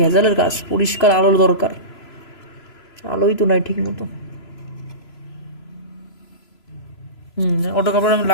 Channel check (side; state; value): right; late; 3.0 ms